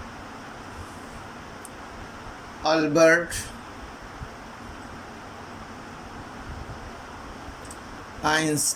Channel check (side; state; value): both; identical; correlation 1.00